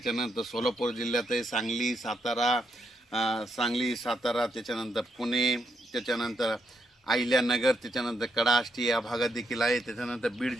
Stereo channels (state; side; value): normal; both; correlation 0.79